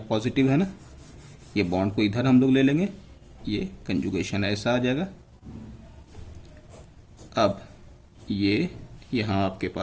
है ना, ये बॉन्ड को इधर हम लोग ले लेंगे, ये कंजुगेशन ऐसा आ जाएगा। अब ये यहाँ आपके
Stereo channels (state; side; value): identical; both; correlation 1.00